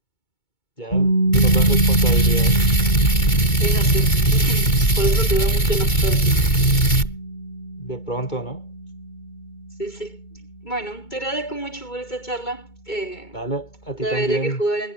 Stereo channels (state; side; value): late; right; 2.2 ms